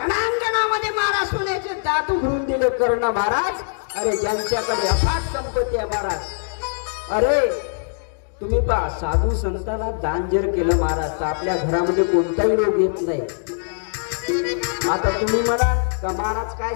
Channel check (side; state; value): right; silent; digital silence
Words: महाराज सोन्याचे दात उघडून दिले कर्ण महाराज. अरे ज्यांच्याकडे अफाट संपत्ती आहे महाराज, अरे तुम्ही पहा साधू संतांना दान जर केलं महाराज तर आपल्या घरामध्ये कोणताही रोग येत नाही. आता तुम्ही मला का महाराज काय